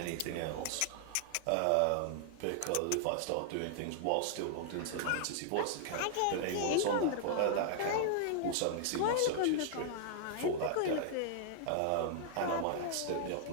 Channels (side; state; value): both; different; correlation -0.01